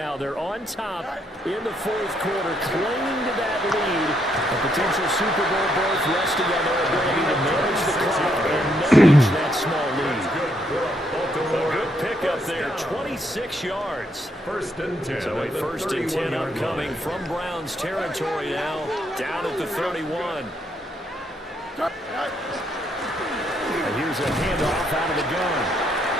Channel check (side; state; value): both; normal; correlation 0.75